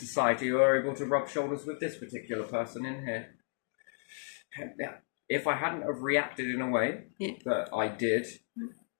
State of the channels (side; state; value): right; silent; 56 dB below the other